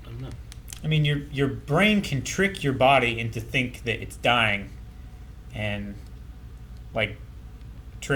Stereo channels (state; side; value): identical; both; correlation 1.00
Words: know. I mean, your brain can trick your body into think that it's dying, and like